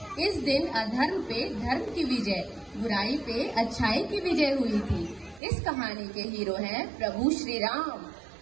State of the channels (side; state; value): left; drops out; at 5.4 s